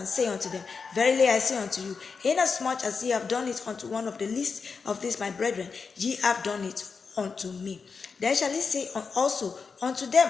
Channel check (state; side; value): quieter; right; 5.2 dB